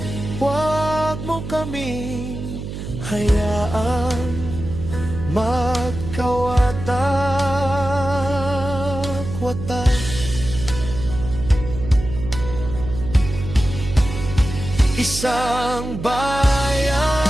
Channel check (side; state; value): right; noise; hum, 8 dB below the sound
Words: huwag mo kami hayaan magkawatak-watak. Isang bayan,